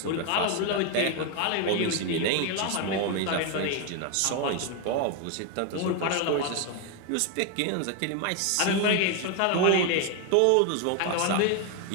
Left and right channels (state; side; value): different; both; correlation 0.01